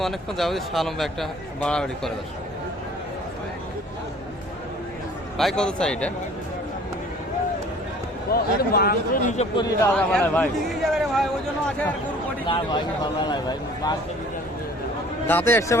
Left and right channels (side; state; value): both; normal; correlation 0.51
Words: অনেকক্ষণ যাবতীয় শাহালম ভাই একটা বাড়াবাড়ি করে দর্শক। ভাই কত চাই এটা? দাঁতে আসছে